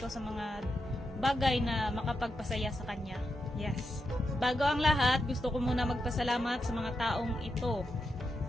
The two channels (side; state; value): both; normal; correlation 0.86